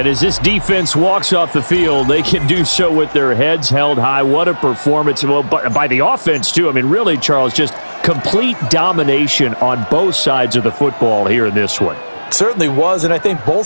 as this defense walks off the field, they can do so with their heads held high. What a performance. Well, by the offense, too. I mean, really, Charles, just complete domination on both sides of the football here in this one. Certainly was, and I think both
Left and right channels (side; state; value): both; inverted; correlation -1.00